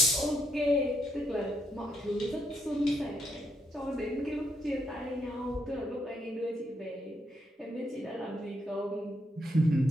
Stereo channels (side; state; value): both; normal; correlation 0.77